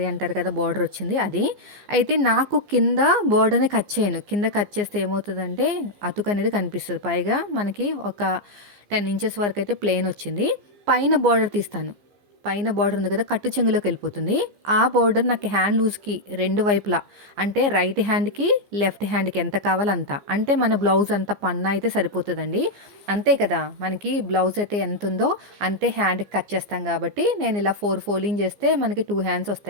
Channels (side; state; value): left; late; 15 ms